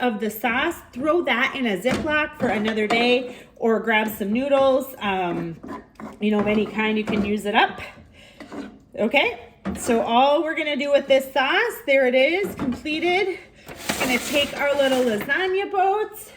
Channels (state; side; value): identical; both; correlation 1.00